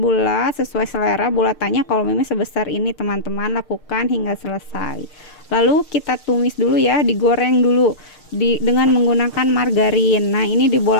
sesuai selera bulatannya. Kalau Mimi sebesar ini teman-teman, lakukan hingga selesai. Lalu kita tumis dulu ya, digoreng dulu dengan menggunakan margarin. Nah, ini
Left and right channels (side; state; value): right; late; 6.6 ms